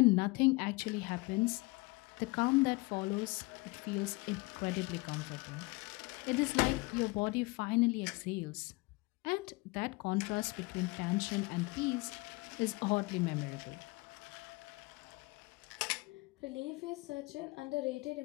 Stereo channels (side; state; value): right; quieter; 25.1 dB